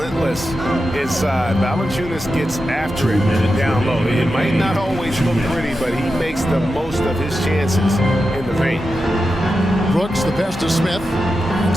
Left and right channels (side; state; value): both; normal; correlation 0.90